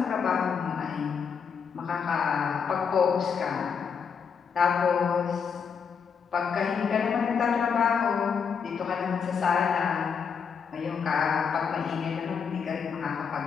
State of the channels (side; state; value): right; quieter; 6.5 dB